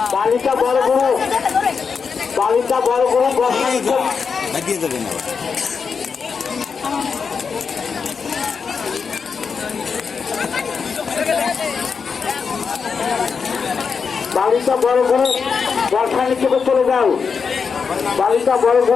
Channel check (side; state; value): right; quieter; 5.7 dB